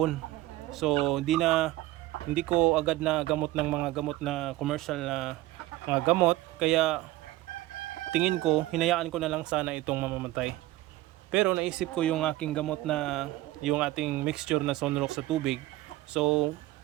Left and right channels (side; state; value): left; quieter; 16.8 dB